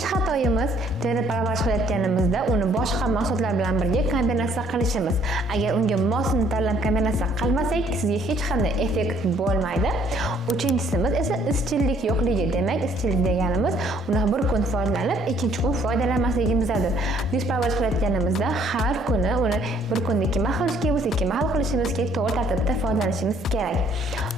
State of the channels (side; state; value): both; normal; correlation 0.63